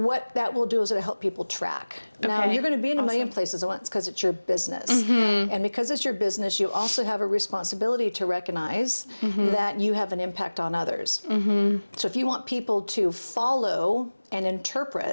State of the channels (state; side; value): inverted; both; correlation -1.00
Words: that will do is it'll help people track. Now, you're going to be in a million places at once because it's your business. And because it's your business, you also have a responsibility to recognize that you have an impact on others. So if you want people to follow and